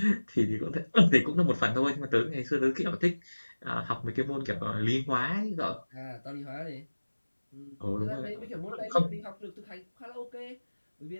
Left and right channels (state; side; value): inverted; both; correlation -1.00